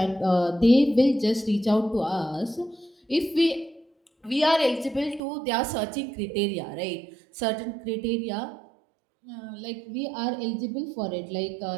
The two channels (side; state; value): left; drops out; at 5.2 s